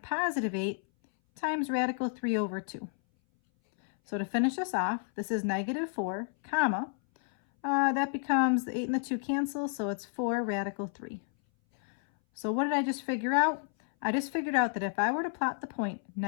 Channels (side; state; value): right; silent; 57 dB below the other